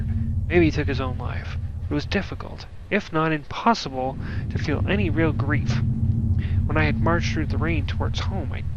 Maybe he took his own life. It was difficult, if not impossible, to feel any real grief. When I had marched through the rain towards home, I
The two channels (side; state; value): both; identical; correlation 1.00